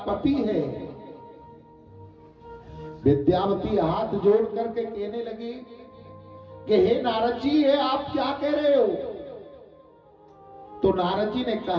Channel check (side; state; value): both; identical; correlation 1.00